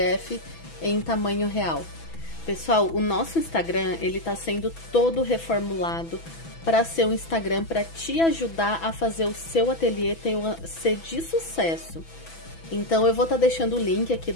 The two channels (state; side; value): late; right; 6.1 ms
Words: em tamanho real. Pessoal, o nosso Instagram, ele tá sendo todo reformulado para ser um Instagram para te ajudar a fazer o seu ateliê ser de sucesso. Então eu vou estar deixando o link aqui